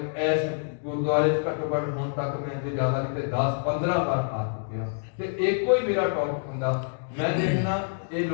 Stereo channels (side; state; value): right; silent; digital silence